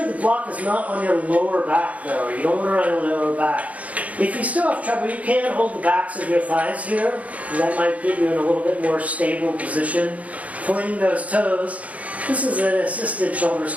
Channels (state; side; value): late; left; 0.068 ms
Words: the block is not on your lower back though. You don't want it on your lower back. If you still have trouble, you can hold the backs of your thighs here. And that might get you in a little bit more stable position. Pointing those toes. This is an assisted shoulder